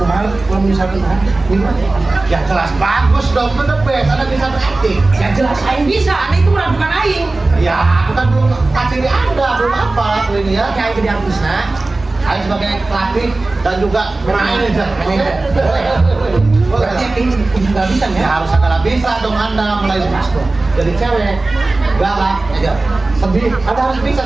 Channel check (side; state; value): left; quieter; 3.2 dB